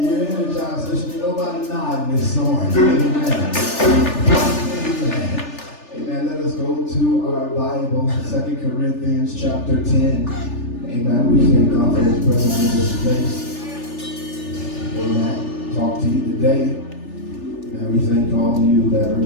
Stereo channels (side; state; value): right; late; 3.4 ms